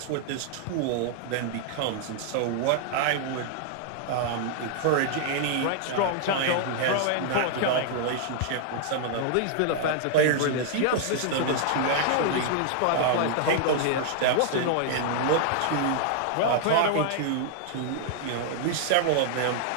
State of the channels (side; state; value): both; different; correlation -0.01